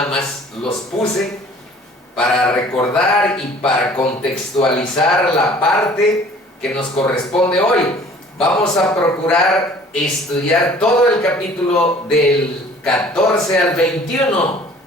más los puse para recordar y para contextualizar la parte que nos corresponde hoy. Vamos a procurar estudiar todo el capítulo del 14 al 21.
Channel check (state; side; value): normal; both; correlation 0.51